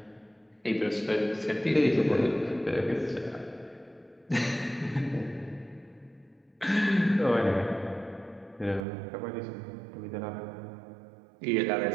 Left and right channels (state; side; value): drops out; left; at 8.8 s